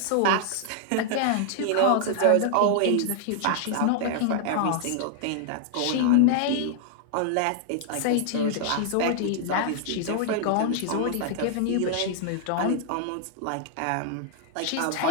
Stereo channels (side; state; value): both; different; correlation -0.01